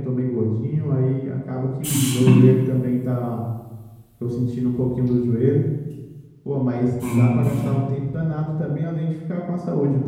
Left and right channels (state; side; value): identical; both; correlation 1.00